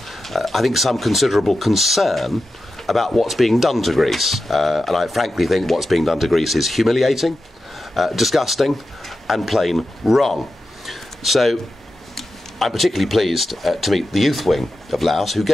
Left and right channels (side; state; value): both; normal; correlation 0.91